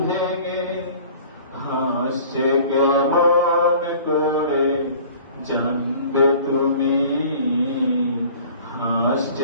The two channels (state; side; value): inverted; both; correlation -0.48